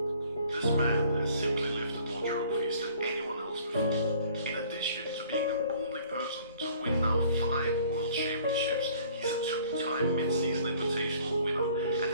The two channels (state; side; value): inverted; both; correlation -0.55